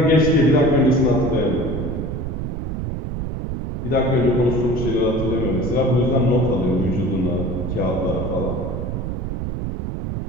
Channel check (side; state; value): right; noise; rumble, 4 dB below the sound